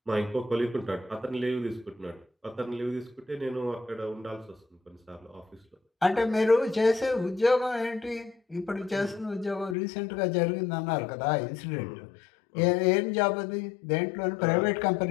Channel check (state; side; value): drops out; right; at 9.8 s